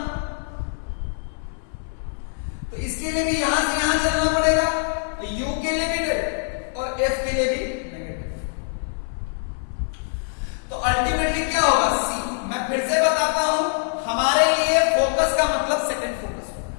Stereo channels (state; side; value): silent; right; 63 dB below the other